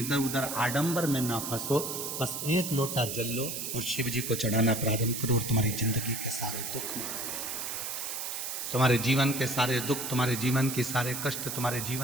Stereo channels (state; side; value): noise; right; hiss, 4 dB below the sound